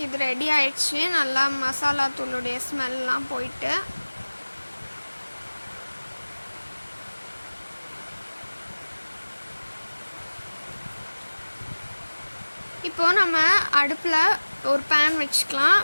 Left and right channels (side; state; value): both; inverted; correlation -1.00